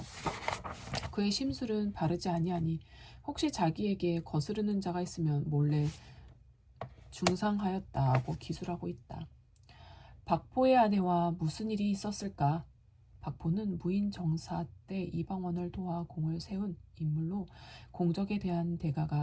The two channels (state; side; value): identical; both; correlation 1.00